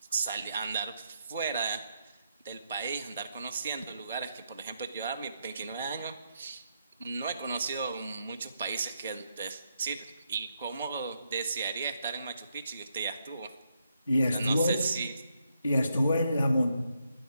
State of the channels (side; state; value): both; inverted; correlation -0.79